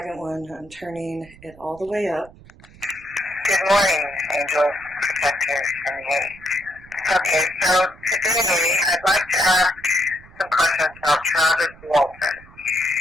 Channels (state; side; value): noise; right; rumble, 23 dB below the sound